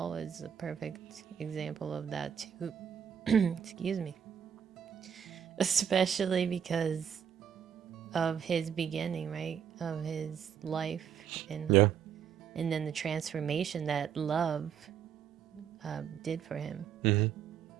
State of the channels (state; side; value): quieter; left; 8.3 dB